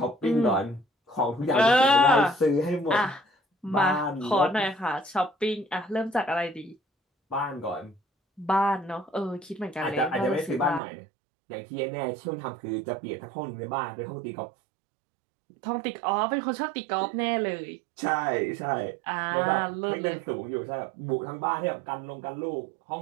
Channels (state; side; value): drops out; left; at 10.8 s